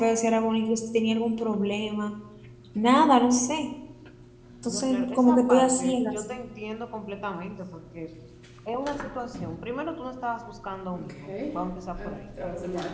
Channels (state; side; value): identical; both; correlation 1.00